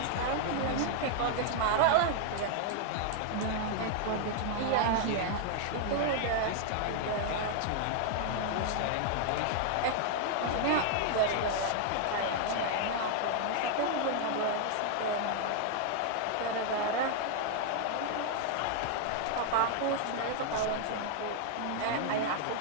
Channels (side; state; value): both; different; correlation 0.00